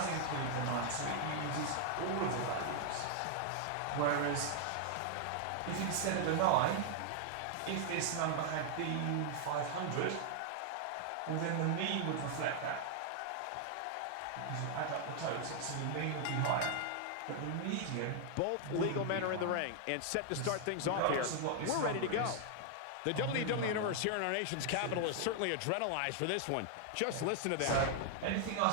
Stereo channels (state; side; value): different; both; correlation 0.00